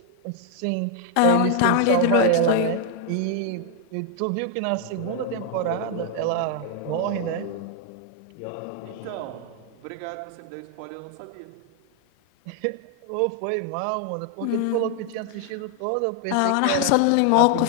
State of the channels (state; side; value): different; both; correlation 0.00